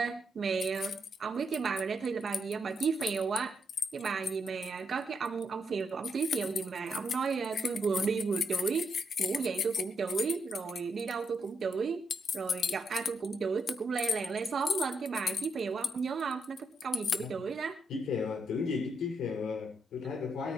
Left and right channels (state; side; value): normal; both; correlation 0.79